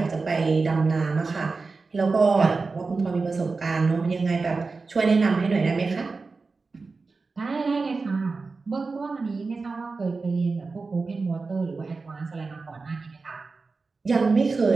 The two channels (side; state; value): left; quieter; 4.1 dB